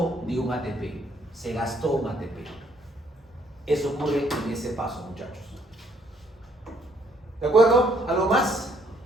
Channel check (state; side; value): normal; both; correlation 0.67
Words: de un ATP. Se gastó un ATP. Eso ocurre en ese paso, muchachos. ¿De acuerdo? ¿Algo más?